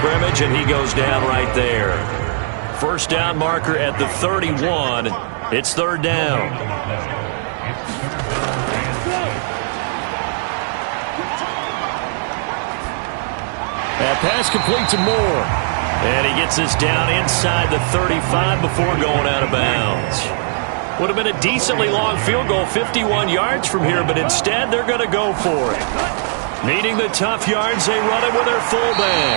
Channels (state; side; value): silent; left; digital silence